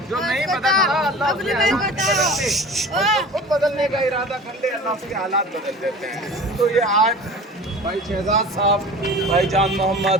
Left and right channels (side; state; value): both; normal; correlation 0.39